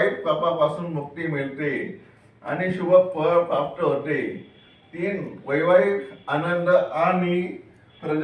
पापापासून मुक्ती मिळते आणि शुभ फळ प्राप्त होते. 3. वैवाहिक आनंद आणि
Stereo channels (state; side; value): identical; both; correlation 1.00